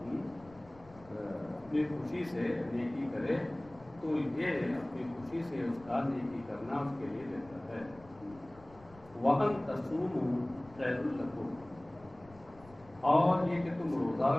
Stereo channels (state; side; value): noise; left; rumble, 23 dB below the sound